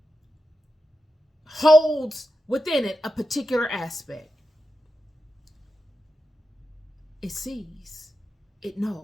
holds within it a particular aspect. It sees, it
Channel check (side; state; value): both; normal; correlation 0.89